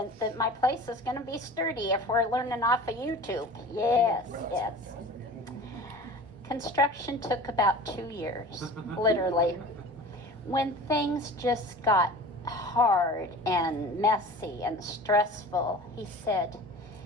that my place is going to be sturdy if we're learning off of YouTube. Yes. Construction took about 2 years, literally. When things just got hard and messy and stressful, he said,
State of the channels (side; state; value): both; normal; correlation 0.39